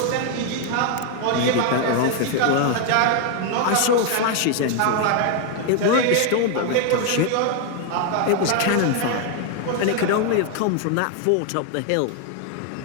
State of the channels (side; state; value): both; different; correlation 0.01